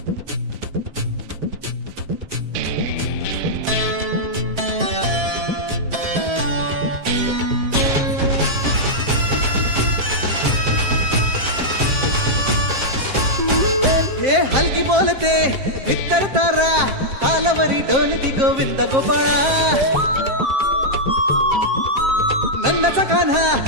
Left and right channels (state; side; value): late; left; 7.5 ms